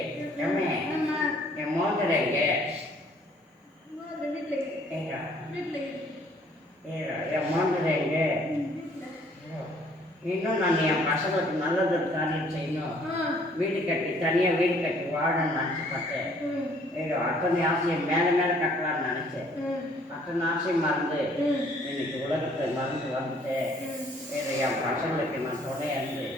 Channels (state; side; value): normal; both; correlation 0.60